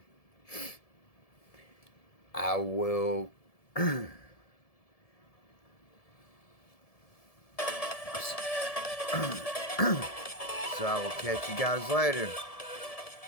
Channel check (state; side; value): late; right; 1.7 ms